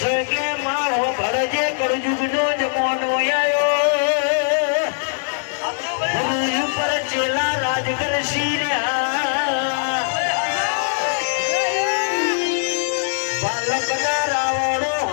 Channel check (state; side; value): silent; right; digital silence